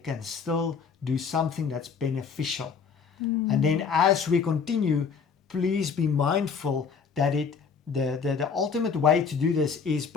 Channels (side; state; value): right; quieter; 6.0 dB